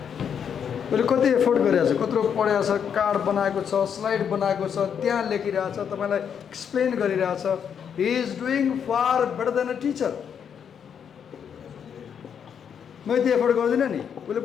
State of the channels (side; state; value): right; quieter; 7.8 dB